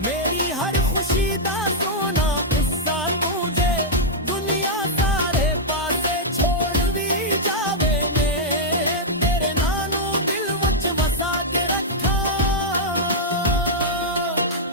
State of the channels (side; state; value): both; normal; correlation -0.06